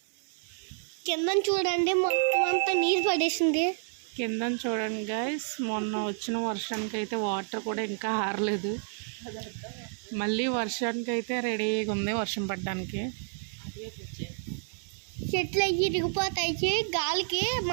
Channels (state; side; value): silent; left; 58 dB below the other